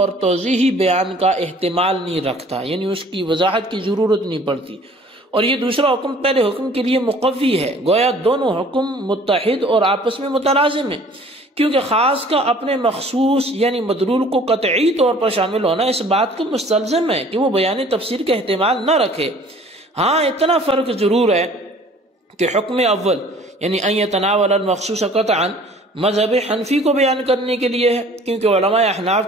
توضیحی بیان کا احتمال نہیں رکھتا، یعنی اس کی وضاحت کی ضرورت نہیں پڑتی، اور یہ دوسرا حکم پہلے حکم کے لیے مقوی ہے، گویا دونوں حکم متحد اور آپس میں متلازم ہیں، کیونکہ خاص کا اپنے مخصوص یعنی مدلول کو قطعی طور پر شامل ہونا اس بات کو مستلزم ہے کہ وہ بیان تفسیر کا احتمال نہ رکھے۔ ہاں اتنا فرق ضرور ہے کہ حکم اول یعنی ان یتناول المخصوص قطعا مذہب حنفی کو بیان کرنے کے لیے ہے، کیونکہ علماء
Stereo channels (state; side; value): normal; both; correlation 0.52